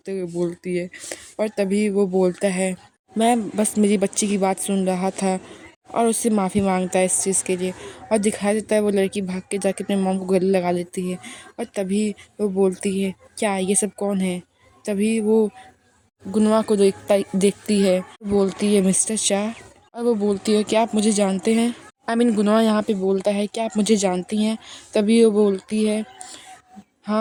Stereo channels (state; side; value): identical; both; correlation 1.00